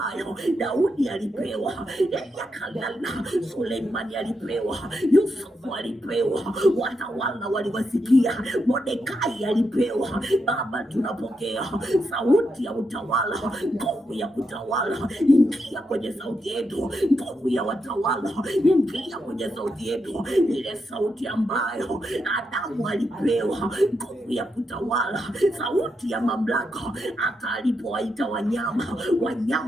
Daudi alipewa, yakalala Suleimani alipewa, Yusufu alipewa, watawala waliwasikia, Mordekai alipewa. Baba, tunapokea sauti ya utawala, nguvu ya kutawala. Ingia kwenye sauti yetu, nguvu ya watawala. Ingia kwenye sauti yetu, ile sauti ambayo Adamu alipewa, nguvu ya kutawala, sauti ya mamlaka. Hata alipowaita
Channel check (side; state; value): both; normal; correlation 0.83